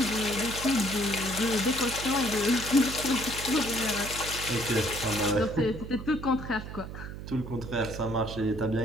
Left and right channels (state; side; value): noise; right; hum, 10 dB below the sound